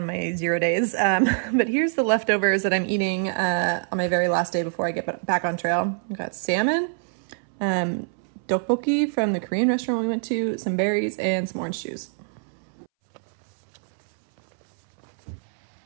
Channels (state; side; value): silent; left; 62 dB below the other